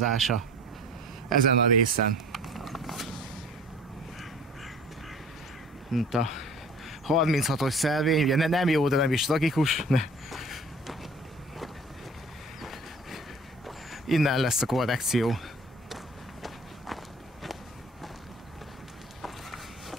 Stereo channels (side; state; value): both; normal; correlation 0.46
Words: ezen a részen. Mint a 36-os szelvény, ugye nem jó, de nem is tragikus. Innen lesz a korrekció.